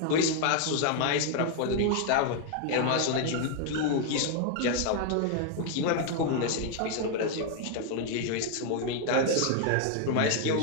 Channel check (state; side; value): different; both; correlation 0.00